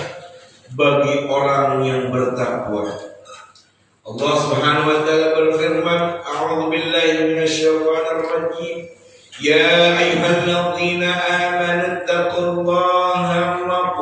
bagi orang yang bertakwa. Allah Subhanahu wa taala berfirman, A'udzu billahi minasyaitonir rajim. Ya ayyuhalladzina amanu taqullaha wa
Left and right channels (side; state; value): both; identical; correlation 1.00